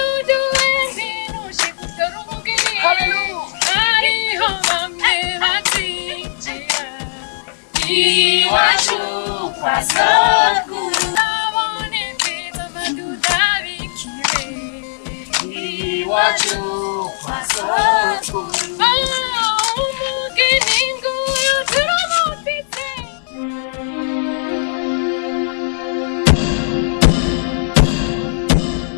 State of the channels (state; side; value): silent; right; 64 dB below the other